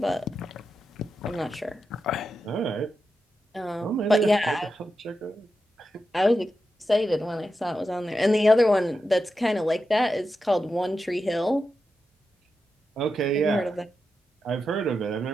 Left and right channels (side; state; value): both; normal; correlation 0.89